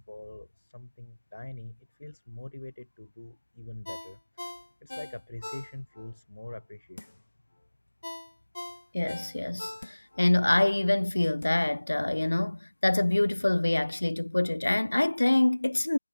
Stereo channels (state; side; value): inverted; both; correlation -1.00